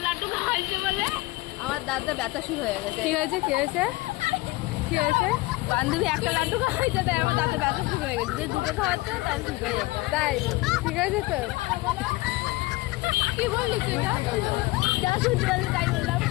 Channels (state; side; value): quieter; right; 21.2 dB